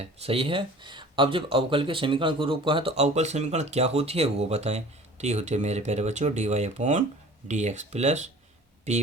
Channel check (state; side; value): normal; both; correlation 0.45